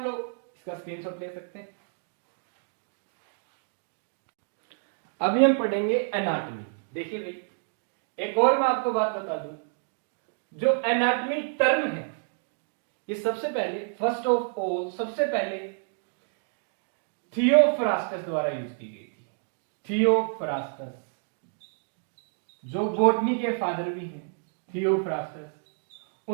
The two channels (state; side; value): silent; left; 59 dB below the other